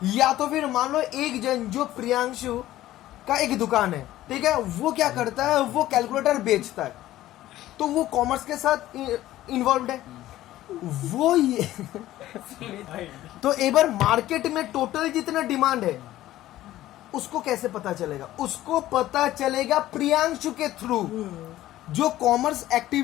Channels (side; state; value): right; quieter; 14.7 dB